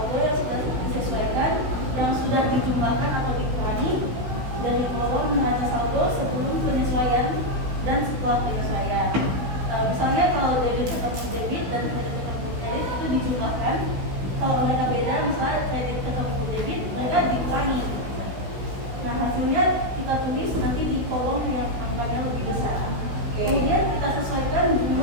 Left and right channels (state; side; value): late; left; 16 ms